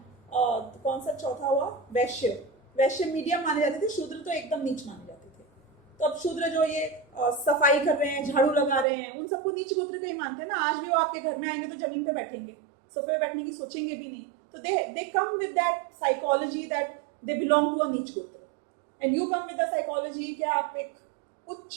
कौन सा चौथा हुआ, वैश्य, वैश्य मीडियम माने जाते थे, शूद्र तो एकदम नीच माने जाते थे। तो अब शूद्र जो ये सफाई कर रहे हैं, झाड़ू लगा रहे हैं, उन सबको नीच गोत्र का ही मानते हैं ना। आज भी वो आपके घर में आएंगे तो जमीन पे बैठेंगे, सोफे पे बैठने की सोचेंगे भी नहीं। तो they come with that psychology that they belong to a नीच गोत्र, and you come with the psychology कि आप एक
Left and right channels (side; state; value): left; drops out; at 8.8 s